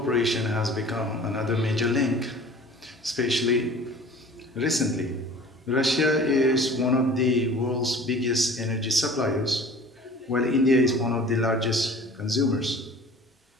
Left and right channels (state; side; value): normal; both; correlation 0.45